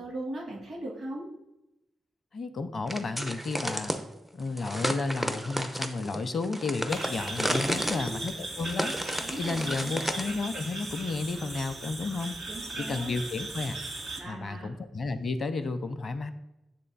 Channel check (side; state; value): both; normal; correlation 0.88